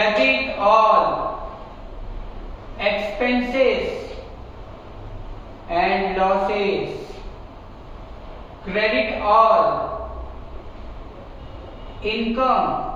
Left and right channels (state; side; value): identical; both; correlation 1.00